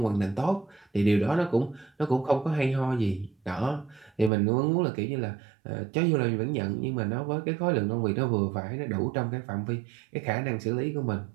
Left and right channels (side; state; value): left; drops out; at 4.3 s